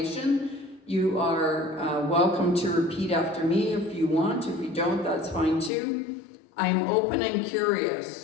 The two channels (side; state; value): right; drops out; at 5.7 s